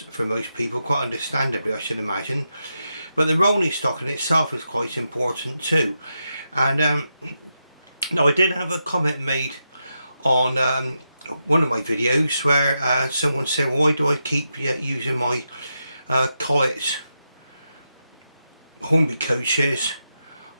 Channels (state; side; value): inverted; both; correlation -0.86